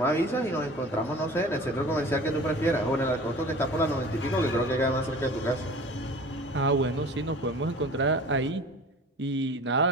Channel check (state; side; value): normal; both; correlation 0.41